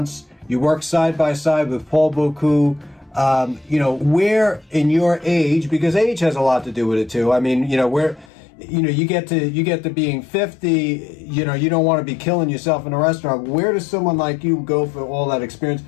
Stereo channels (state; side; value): drops out; right; at 8.3 s